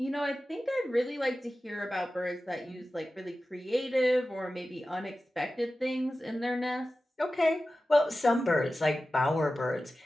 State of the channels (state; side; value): normal; both; correlation 0.95